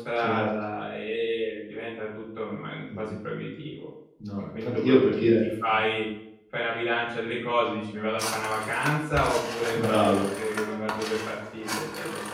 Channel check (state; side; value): identical; both; correlation 1.00